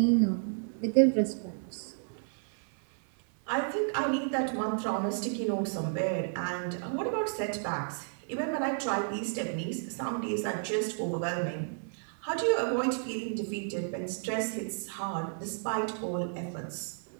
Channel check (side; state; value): left; silent; 56 dB below the other